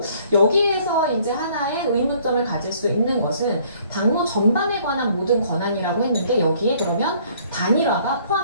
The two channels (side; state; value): both; inverted; correlation -0.60